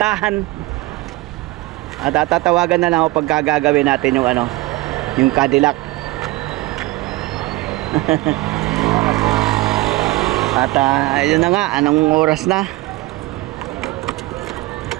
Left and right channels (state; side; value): quieter; left; 19.8 dB